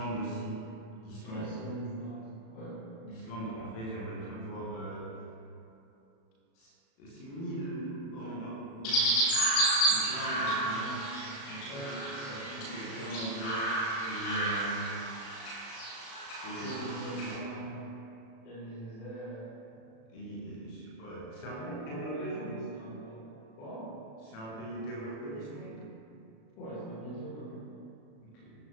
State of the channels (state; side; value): late; right; 36 ms